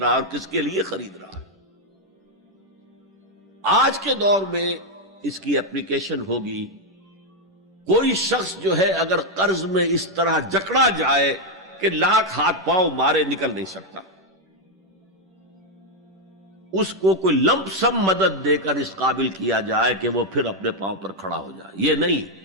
اور کس کے لیے خرید رہا. آج کے دور میں اس کی اپلیکیشن ہوگی. کوئی شخص جو ہے اگر قرض میں اس طرح جکڑا جائے کہ لاکھ ہاتھ پاؤں مارے نکل نہیں سکتا، اس کو کوئی لمپ سم مدد دے کر اس قابل کیا جائے کہ وہ پھر اپنے پاؤں پر کھڑا ہو جائے. یہ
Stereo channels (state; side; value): normal; both; correlation 0.02